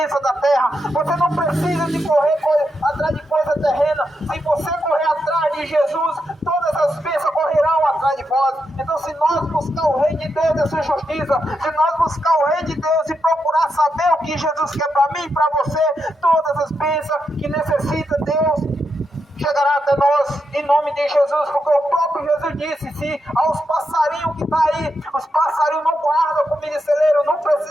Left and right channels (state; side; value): normal; both; correlation 0.84